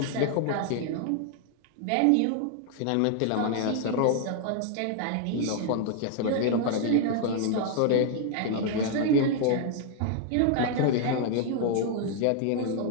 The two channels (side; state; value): both; different; correlation 0.00